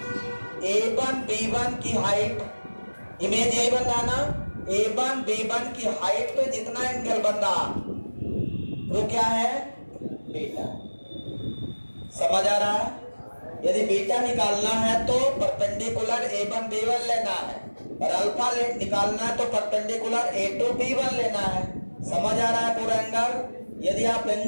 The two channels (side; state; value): both; inverted; correlation -1.00